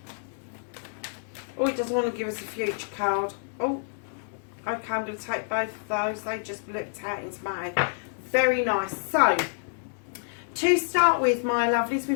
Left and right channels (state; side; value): silent; right; digital silence